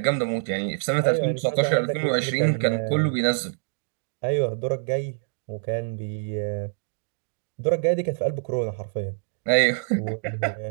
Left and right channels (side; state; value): left; silent; digital silence